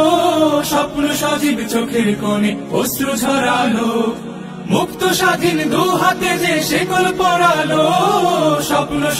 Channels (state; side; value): identical; both; correlation 1.00